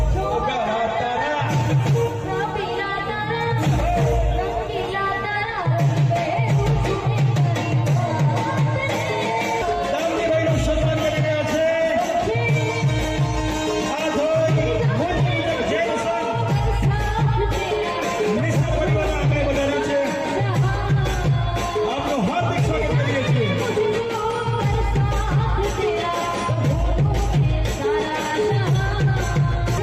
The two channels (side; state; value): both; identical; correlation 1.00